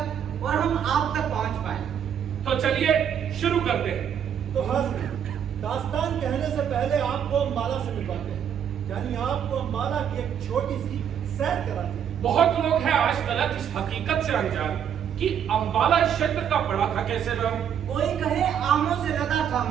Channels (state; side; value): quieter; left; 8.7 dB